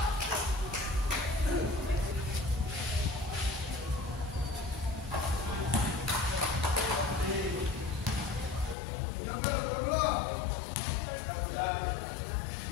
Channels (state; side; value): drops out; right; at 8.8 s